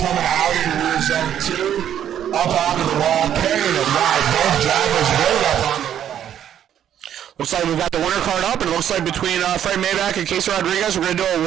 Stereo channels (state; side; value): quieter; left; 10.1 dB